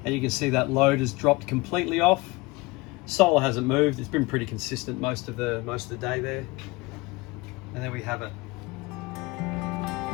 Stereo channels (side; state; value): right; quieter; 23.0 dB